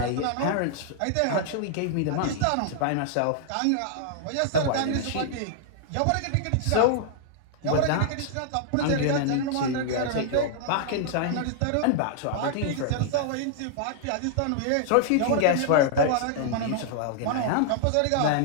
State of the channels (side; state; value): both; different; correlation -0.01